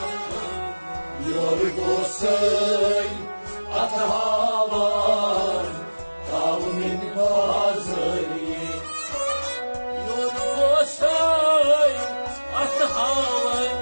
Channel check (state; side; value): inverted; both; correlation -1.00